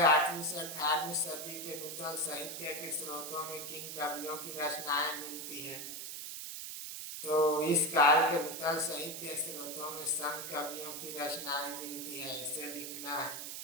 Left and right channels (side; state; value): right; noise; hiss, 7 dB below the sound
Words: 8वीं से 18वीं सदी के नूतन साहित्य के स्रोतों में किन कवियों की रचनाएं मिलती हैं। तो इस काल के नूतन साहित्य स्रोतों में संत कवियों की रचनाएं मिलती है, इसे लिखना है।